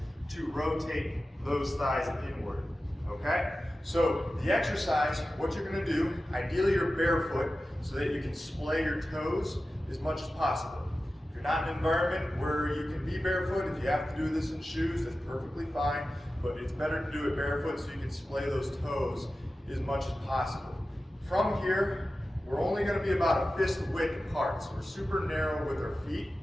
to rotate those thighs inward. Okay? So the exercise, what you're going to do, ideally you're barefoot so that you can splay your toes as much as possible. If you're not in an environment where you can be barefoot, if you have to do this in shoes, that's perfectly fine, but it's better to do it barefoot so you can splay those toes as much as possible. From here, we're only going to be about a fist width apart, so we're super narrow with our feet,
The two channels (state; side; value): normal; both; correlation 0.94